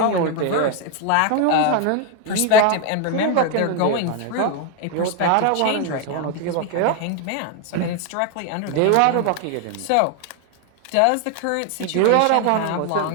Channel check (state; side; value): different; both; correlation 0.01